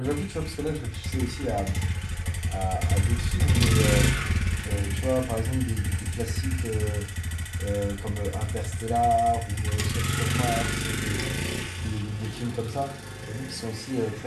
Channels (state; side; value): identical; both; correlation 1.00